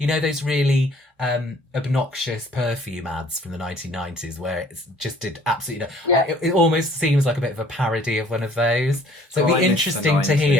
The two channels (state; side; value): normal; both; correlation 0.56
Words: those really obnoxious perfume ads from the 1990s where it just did absolutely Yeah. it almost seems like a bit of a parody of one of those. So Oh, it'd I be miss the interesting to 90s.